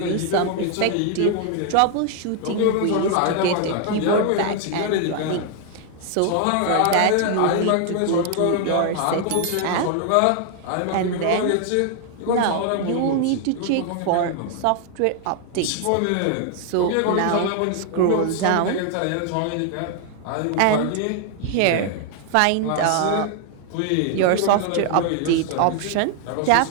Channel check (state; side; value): different; both; correlation 0.00